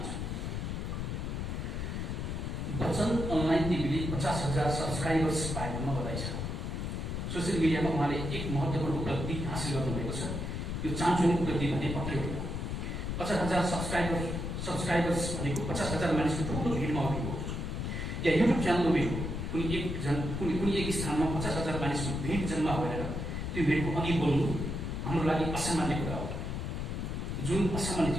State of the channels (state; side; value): noise; left; rumble, 3 dB below the sound